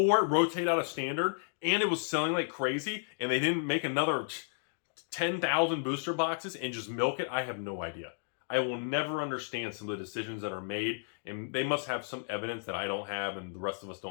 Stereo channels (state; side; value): silent; right; digital silence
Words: it rotated out of standard and it was selling like crazy and they didn't make another 10,000 booster boxes and just milk it? I have no idea. I will never understand some of the decisions that are made, and they must have some evidence that I don't have and the rest of us